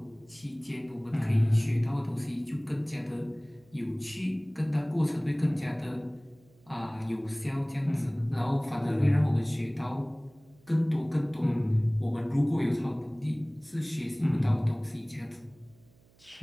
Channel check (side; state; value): right; noise; hum, 30 dB below the sound